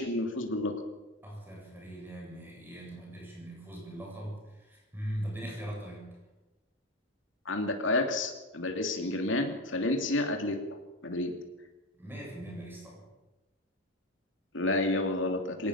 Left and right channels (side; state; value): both; normal; correlation 0.19